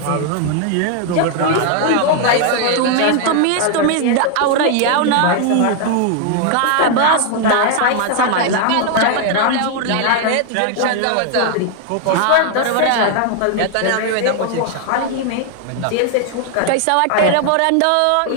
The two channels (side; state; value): both; different; correlation 0.00